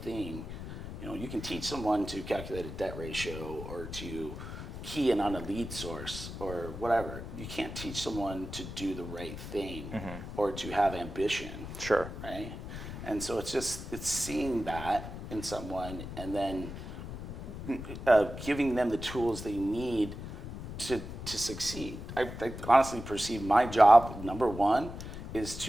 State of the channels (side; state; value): left; noise; rumble, 9 dB below the sound